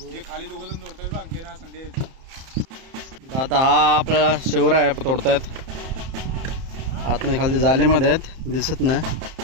खाली दोघं तोडतात ना संदेश. आता हा आपल्याला शिवराय तोडतायत. आतमध्ये खाली जालीमध्ये आहेत, दिसत नाही.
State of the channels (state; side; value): late; left; 31 ms